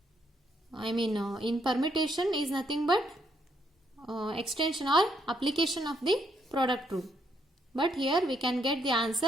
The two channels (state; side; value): normal; both; correlation 0.74